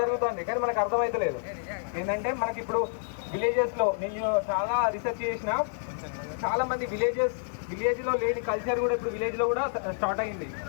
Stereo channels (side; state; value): right; silent; digital silence